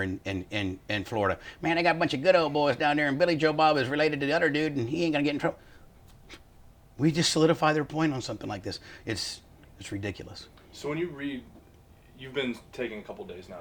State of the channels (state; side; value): identical; both; correlation 1.00